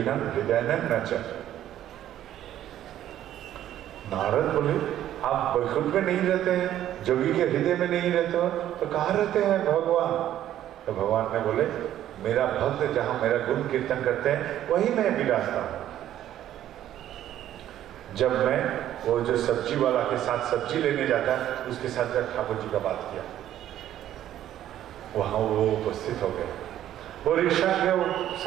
हृदयानां न च। नारद बोले, आप वैकुंठ में नहीं रहते हैं, जोगी के हृदय में नहीं रहते हो, तो कहाँ रहते हैं भगवान? तो भगवान ने बोले, मेरा भक्त जहां मेरा गुण कीर्तन करते हैं वही मैं विराजता हूं। जब मैं वो जो सब्जी वाला के साथ सब्जी लेने जाता है, उसके साथ जब ठाकुर जी का बात किया, वहां वो उपस्थित हो गए। वो रिक्शा के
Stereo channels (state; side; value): quieter; left; 12.0 dB